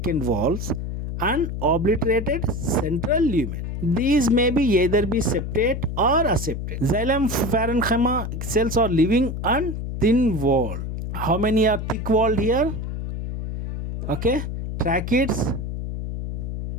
walls and obliterated central lumen. These may be either be septate or aseptate. Xylem parenchyma cells are living on thin wall. How many are thick walled here? Okay, tracheids,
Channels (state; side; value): noise; left; hum, 5 dB below the sound